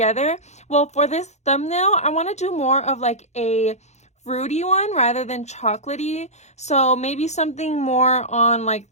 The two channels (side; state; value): right; late; 0.33 ms